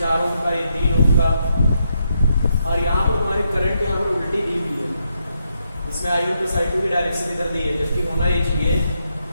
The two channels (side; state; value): both; inverted; correlation -0.80